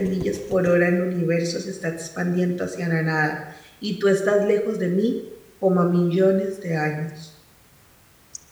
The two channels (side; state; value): both; identical; correlation 1.00